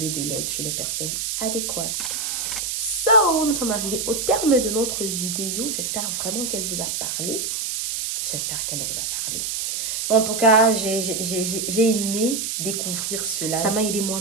de l'aide chez les personnes adéquates. So, nous sommes arrivés au terme de notre vidéo. J'espère vraiment qu'elle vous a parlé. En tout cas, j'ai aimé découvrir cela. Ça m'a aidé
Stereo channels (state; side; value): noise; right; hiss, 2 dB below the sound